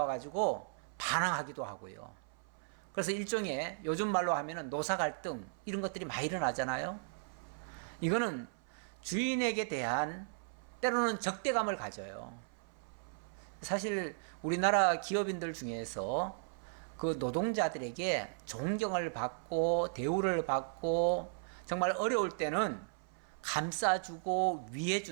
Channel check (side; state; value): left; silent; 54 dB below the other